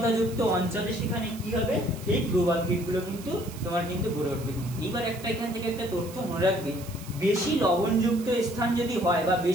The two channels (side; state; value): right; noise; hiss, 17 dB below the sound